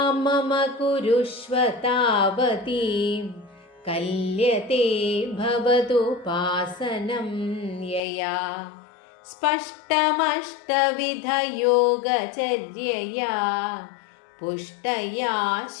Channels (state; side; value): drops out; right; at 8.0 s